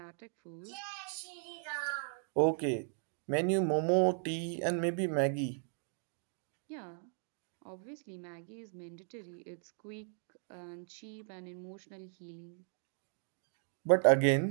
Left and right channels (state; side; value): silent; left; 53 dB below the other